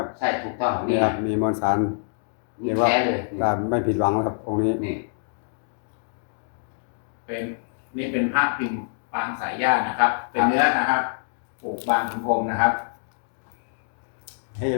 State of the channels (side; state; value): right; silent; digital silence